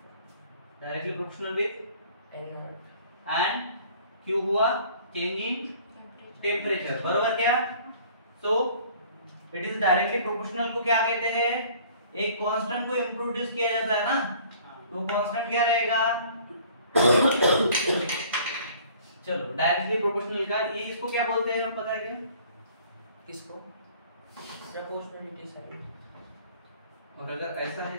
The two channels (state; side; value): inverted; both; correlation -0.52